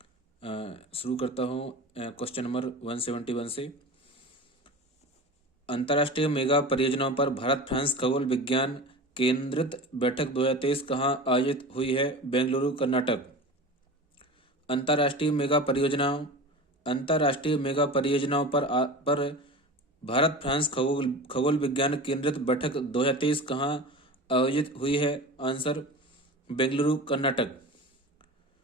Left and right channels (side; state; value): both; normal; correlation 0.32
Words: शुरू करता हूँ क्वेश्चन नंबर 171 से। अंतर्राष्ट्रीय मेगा परियोजनाओं पर भारत फ्रांस खगोल विज्ञान केंद्रित बैठक 2023 कहाँ आयोजित हुई है? बेंगलुरु, कर्नाटक। अंतर्राष्ट्रीय मेगा परियोजनाओं पर भारत फ्रांस खगोल विज्ञान केंद्रित बैठक 2023 कहाँ आयोजित हुई है? Answer Bengaluru, Karnataka.